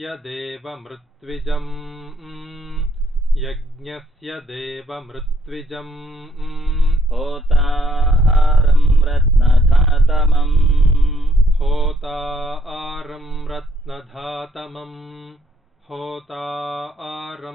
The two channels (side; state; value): both; normal; correlation 0.70